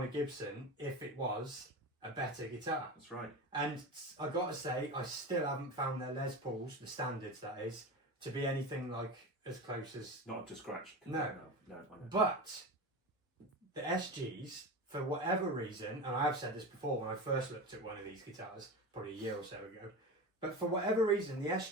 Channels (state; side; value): normal; both; correlation 0.26